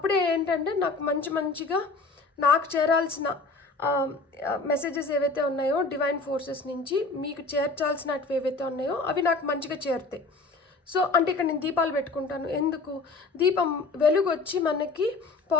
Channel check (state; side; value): quieter; right; 3.7 dB